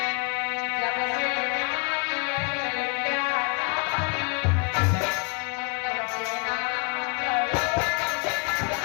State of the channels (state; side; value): quieter; right; 34.9 dB